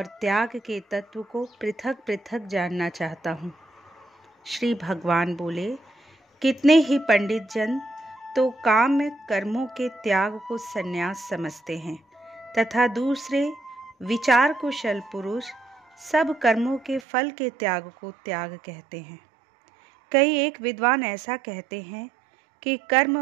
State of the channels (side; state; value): left; drops out; at 17.0 s